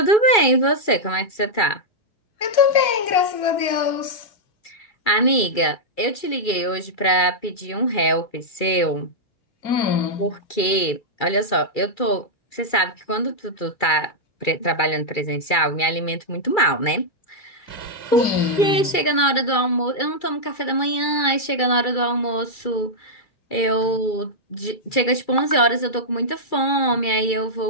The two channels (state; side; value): late; right; 2.3 ms